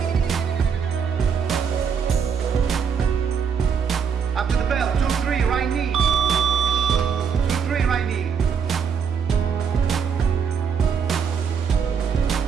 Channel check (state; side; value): quieter; left; 6.8 dB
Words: After the bell. 2-3, right knee. 2-3, right knee.